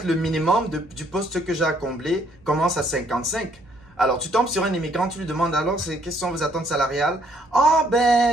le minimum du poste que j'ai à combler commence à 55. Alors, tu tombes sur un immigrant, tu lui demandes alors, quelles sont vos attentes salariales? Ah,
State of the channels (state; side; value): normal; both; correlation 0.67